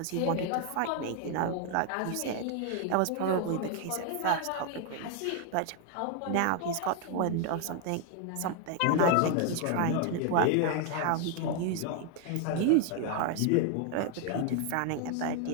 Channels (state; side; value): different; both; correlation 0.00